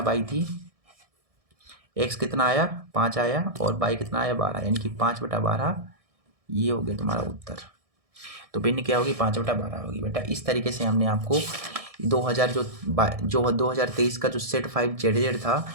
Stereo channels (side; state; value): left; late; 1.6 ms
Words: थी। x कितना आया 5 आया और y कितना आया 12, यानी कि 5/12 ये हो गया तुम्हारा उत्तर। तो भिन्न क्या होगी 5/12 होगी बेटा। इस तरीके से हमने आपको 2023 का जो सेट 5 जेड था